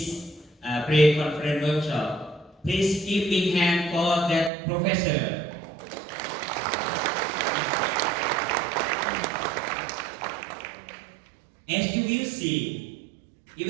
pre-conference workshop. Please give big hand for that professor. As you will see,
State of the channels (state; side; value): drops out; left; at 4.5 s